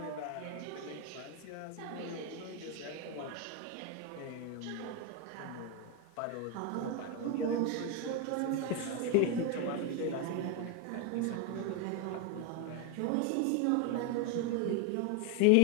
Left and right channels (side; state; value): both; different; correlation 0.02